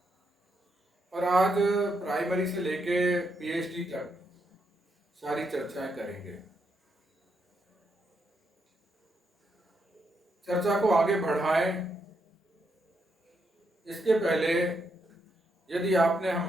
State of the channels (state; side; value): normal; both; correlation 0.80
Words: और आज प्राइमरी से लेके पीएचडी तक सारी चर्चाएं करेंगे। चर्चा को आगे बढ़ाएं इसके पहले यदि आपने